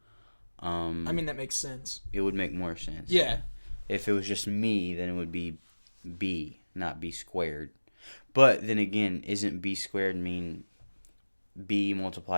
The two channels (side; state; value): both; inverted; correlation -1.00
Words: That makes sense. It would make more sense. Yeah. If it was just me, then it would be B, not B squared. But then again, isn't B squared mean B